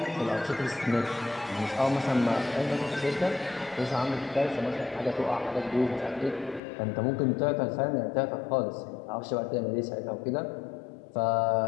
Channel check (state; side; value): drops out; right; at 6.6 s